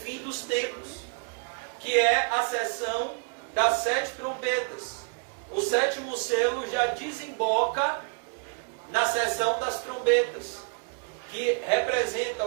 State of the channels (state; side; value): quieter; left; 38.1 dB